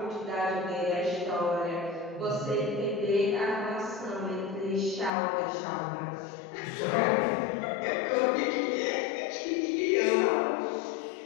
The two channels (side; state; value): right; drops out; at 5.1 s